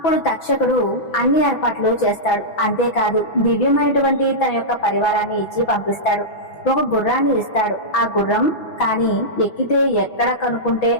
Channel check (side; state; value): right; late; 6.0 ms